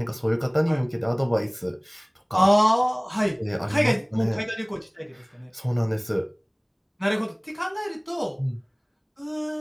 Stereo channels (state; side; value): identical; both; correlation 1.00